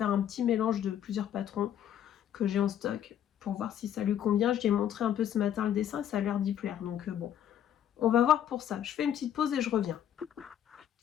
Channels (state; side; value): quieter; right; 10.2 dB